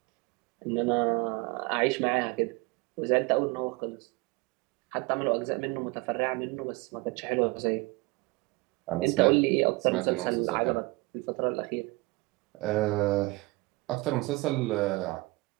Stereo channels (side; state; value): left; quieter; 24.2 dB